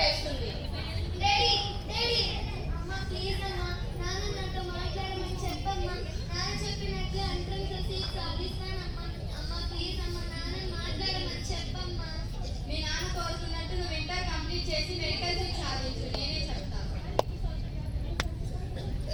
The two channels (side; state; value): both; identical; correlation 1.00